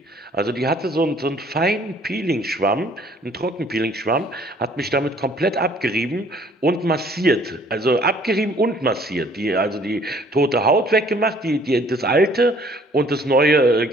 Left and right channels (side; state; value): both; normal; correlation 0.58